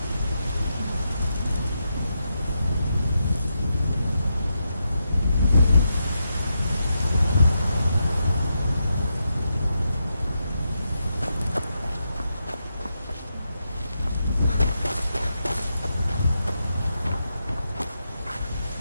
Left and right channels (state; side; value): inverted; both; correlation -0.85